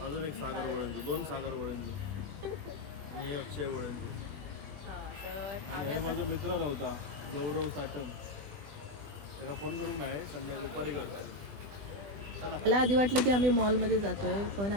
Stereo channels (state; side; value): late; left; 20 ms